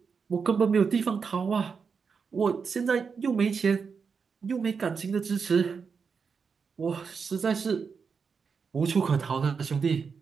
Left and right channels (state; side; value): quieter; left; 5.7 dB